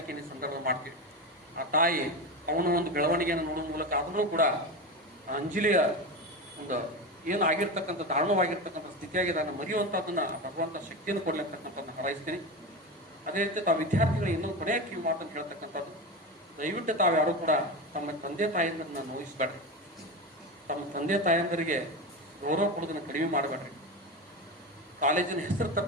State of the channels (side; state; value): both; normal; correlation 0.21